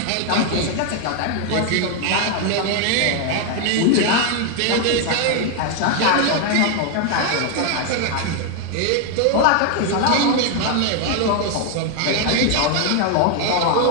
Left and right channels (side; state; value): both; different; correlation 0.00